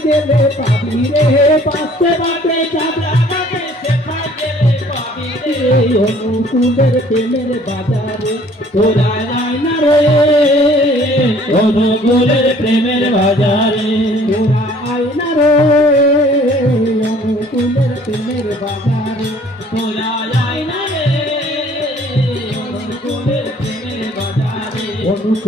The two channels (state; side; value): normal; both; correlation 0.56